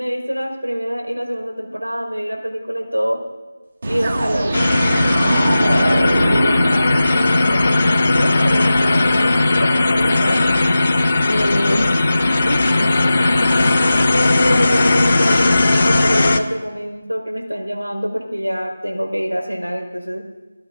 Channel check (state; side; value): inverted; both; correlation -0.95